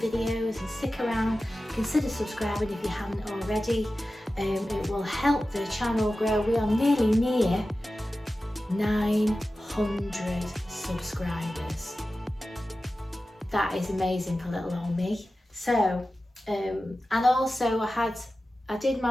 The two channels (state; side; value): normal; both; correlation 0.94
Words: and stick around. Consider subscribing if you haven't already. It will help the channel grow. We are nearly near 900 subscribers. That is amazing for little old me. So, and also I did